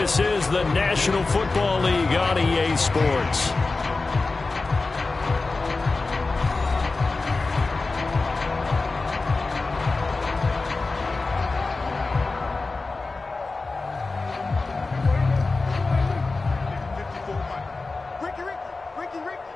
is the National Football League on EA Sports.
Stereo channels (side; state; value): right; quieter; 3.7 dB